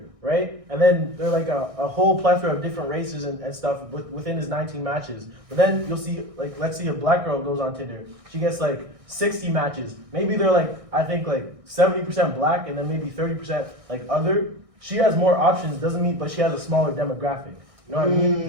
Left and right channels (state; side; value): late; left; 1.6 ms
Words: right? And then there are like a whole plethora of different races and stuff within his 19 matches. But then you'll see, like, let's see a black girl goes on Tinder. She gets like 60 matches. Maybe they're like, I think like 70% black and then maybe 30% like other. She has more options, doesn't mean, but she has a smaller demographic. You know what I mean?